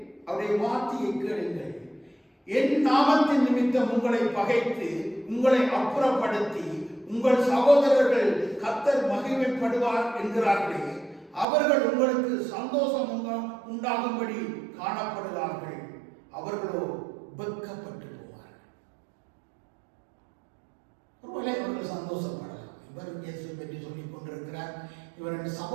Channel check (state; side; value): drops out; left; at 11.5 s